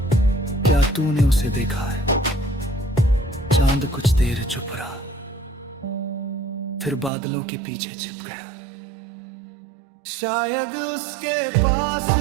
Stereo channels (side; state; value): left; drops out; at 7.1 s